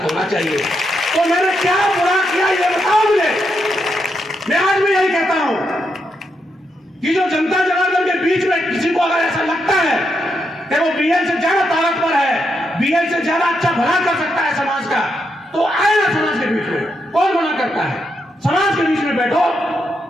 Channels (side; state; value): both; normal; correlation 0.82